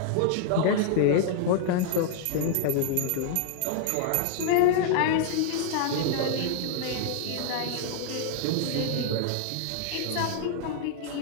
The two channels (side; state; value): both; different; correlation 0.00